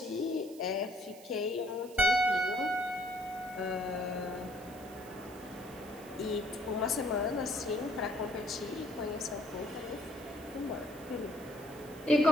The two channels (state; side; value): noise; right; hiss, 20 dB below the sound